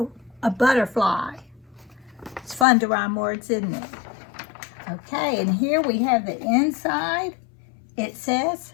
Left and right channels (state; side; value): drops out; right; at 2.7 s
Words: butterfly. It's fun to rhyme words, isn't it? Okay, and here we have the inside. It says,